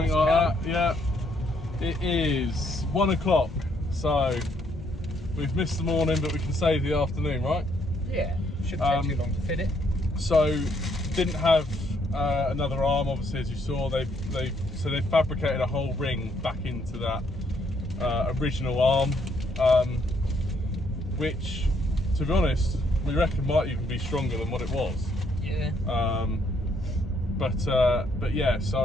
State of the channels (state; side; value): normal; both; correlation 0.71